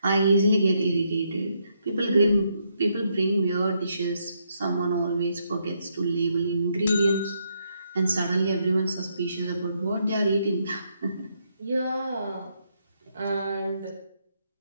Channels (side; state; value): both; inverted; correlation -0.77